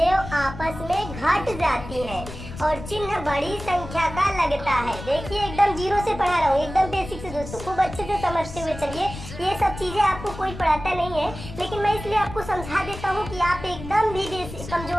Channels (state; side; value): noise; left; rumble, 11 dB below the sound